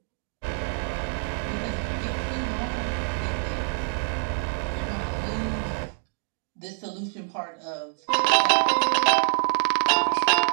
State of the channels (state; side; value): silent; left; digital silence